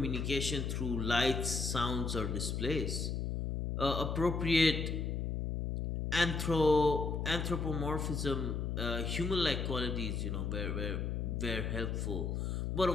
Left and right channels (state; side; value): noise; left; hum, 1 dB below the sound